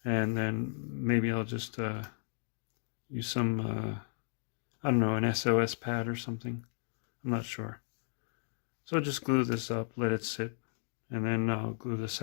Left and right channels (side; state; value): right; silent; digital silence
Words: And then maybe I'll just use some, I don't know, an SOS pad or something. I'm not sure. So just glue this up, let it sit, and then I'll glue the